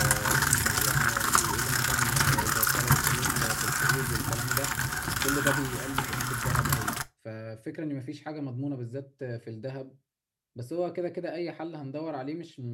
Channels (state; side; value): identical; both; correlation 1.00